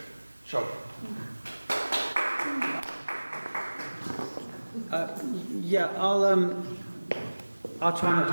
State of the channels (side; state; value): both; inverted; correlation -1.00